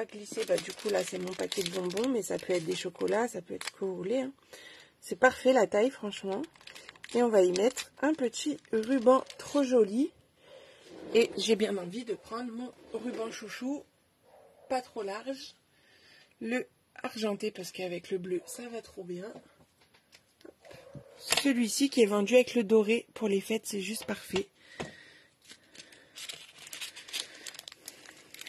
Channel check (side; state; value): both; identical; correlation 1.00